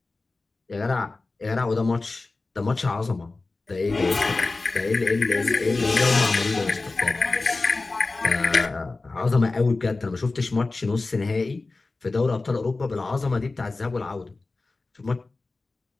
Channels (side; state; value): right; quieter; 3.5 dB